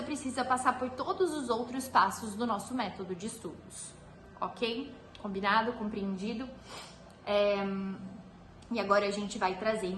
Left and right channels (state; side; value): identical; both; correlation 1.00